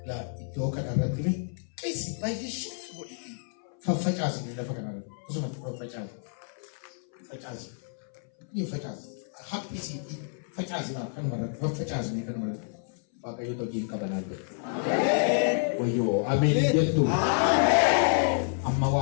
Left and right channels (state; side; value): silent; right; 58 dB below the other